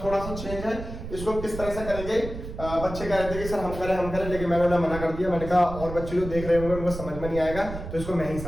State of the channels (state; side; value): noise; right; rumble, 9 dB below the sound